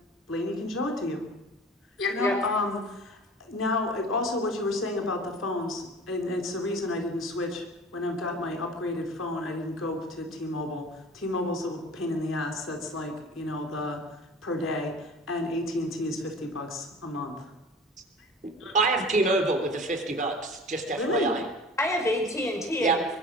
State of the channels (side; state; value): both; normal; correlation 0.41